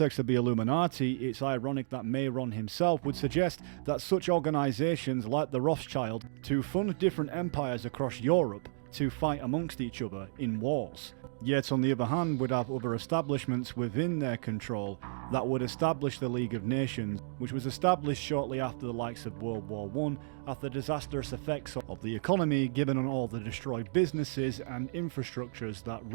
of the Illuminati, it's ironic that Mayron himself would suggest that such organizations like the Rothschild to fund different empires across Europe to fight amongst each other in wars. Yet on the other hand would have other establishments within their control that would establish the League of Nations, which was established shortly after the likes of World War I, after the disastrous effects of the economy given on all the destroyed businesses and infrastructures that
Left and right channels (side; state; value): left; silent; digital silence